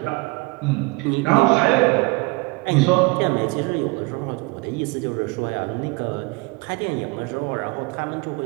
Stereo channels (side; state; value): left; quieter; 26.0 dB